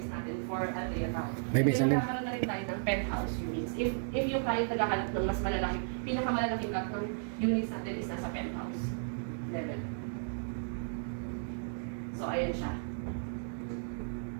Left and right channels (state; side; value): silent; left; digital silence